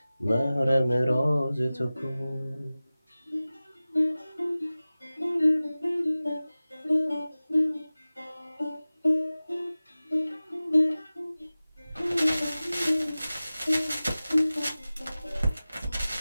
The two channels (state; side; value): inverted; both; correlation -0.97